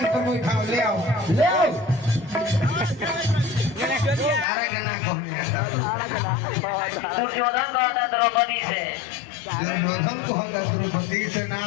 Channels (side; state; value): right; drops out; at 4.5 s